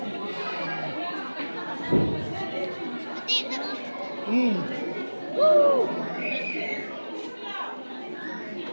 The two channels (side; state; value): both; inverted; correlation -1.00